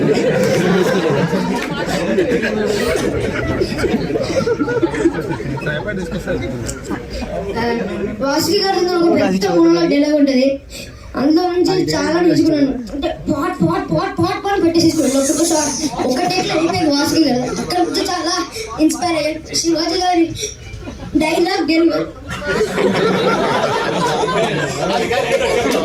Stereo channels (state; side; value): identical; both; correlation 1.00